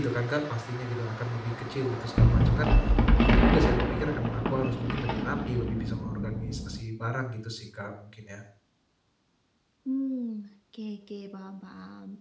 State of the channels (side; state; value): both; identical; correlation 1.00